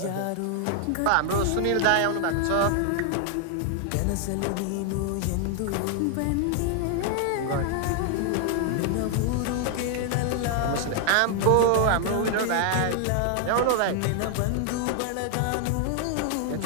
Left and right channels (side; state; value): both; different; correlation 0.00